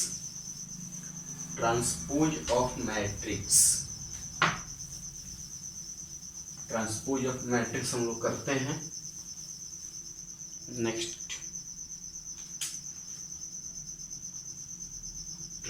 Transpose of matrix, transpose of matrix हम लोग करते हैं। Next,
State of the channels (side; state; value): both; identical; correlation 1.00